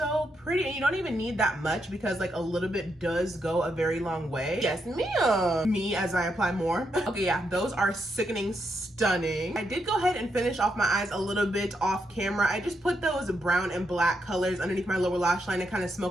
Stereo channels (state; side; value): normal; both; correlation 0.81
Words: pretty, and you don't even need that much because like a little bit does go a very long way. Yes, ma'am. Me as I apply more. Okay, yeah, those are sickening stunning. I did go ahead and finish off my eyes a little bit off camera. I just put those brown and black colors underneath my lower lash line and kind of